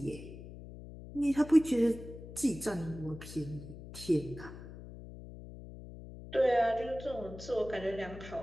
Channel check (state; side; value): noise; left; hum, 14 dB below the sound